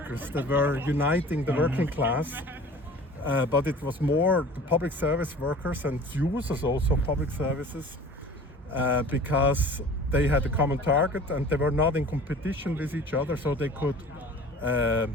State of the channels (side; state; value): both; normal; correlation 0.44